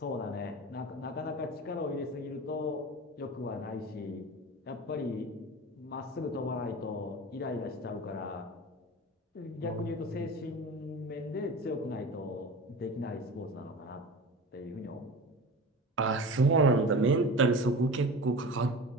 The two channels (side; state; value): both; normal; correlation 0.33